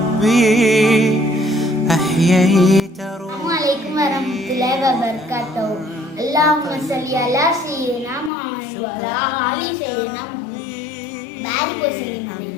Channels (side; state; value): right; drops out; at 8.3 s